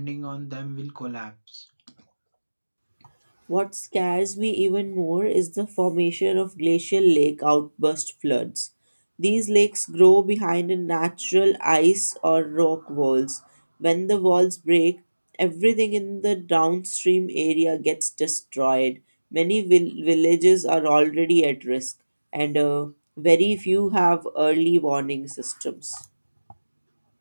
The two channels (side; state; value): both; inverted; correlation -1.00